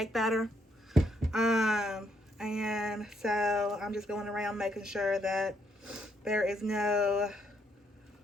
batter. And so I'm just going around making sure that there is no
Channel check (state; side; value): normal; both; correlation 0.73